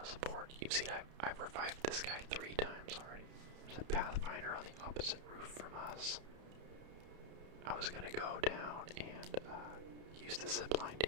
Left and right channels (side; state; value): left; late; 31 ms